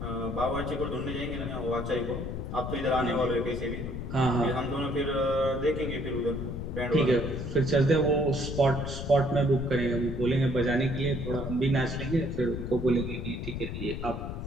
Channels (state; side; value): noise; left; rumble, 5 dB below the sound